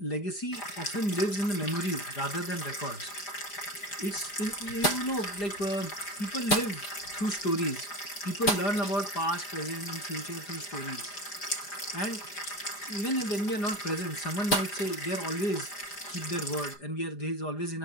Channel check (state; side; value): late; right; 4.9 ms